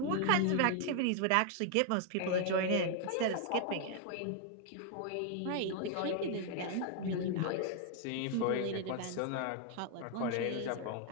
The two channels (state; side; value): different; both; correlation 0.00